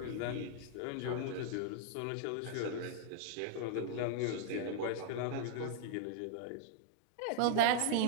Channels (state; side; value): different; both; correlation -0.01